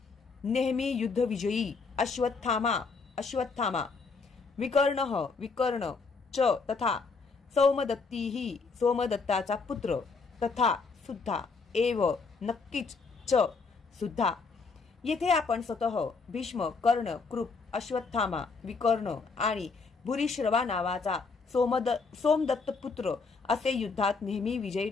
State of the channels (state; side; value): quieter; right; 4.5 dB